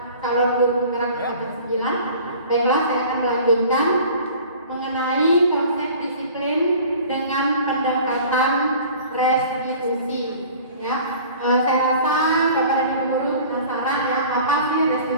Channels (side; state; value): both; inverted; correlation -0.46